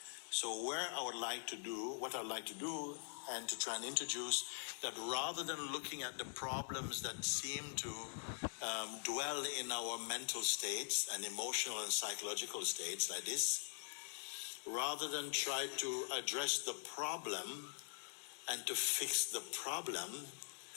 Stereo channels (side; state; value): right; silent; digital silence